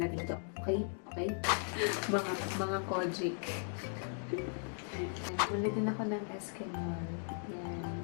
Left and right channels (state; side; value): silent; right; 53 dB below the other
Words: dito. Okay? Okay? mga Kojic. Bumili din ako ng Eskimol. Yan.